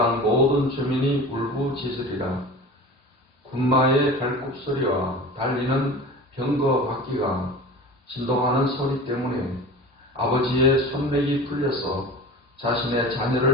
모든 주민이 울부짖으리라. 군마의 발굽소리와 달리는 병거 바퀴가 진동하는 소리 때문에 아버지의 손맥이 풀려서 자신의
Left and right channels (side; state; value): both; normal; correlation 0.36